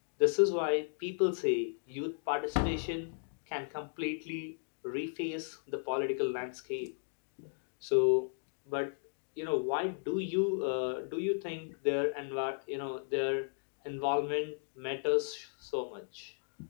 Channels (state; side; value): silent; right; digital silence